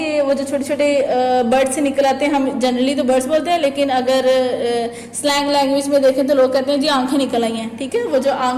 वो जो छोटे छोटे बर्ड से निकल आते हैं, हम जनरली तो बर्ड्स बोलते हैं, लेकिन अगर स्लैंग लैंग्वेज में देखें तो लोग कहते हैं जी आंखें निकल आई हैं, ठीक है। वो जो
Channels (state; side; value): identical; both; correlation 1.00